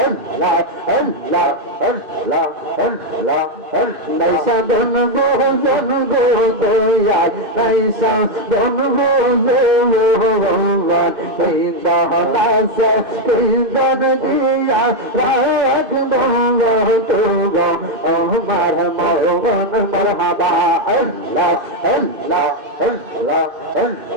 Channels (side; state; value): left; late; 2.5 ms